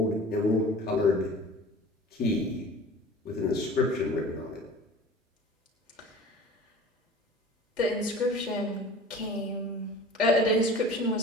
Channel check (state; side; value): normal; both; correlation 0.42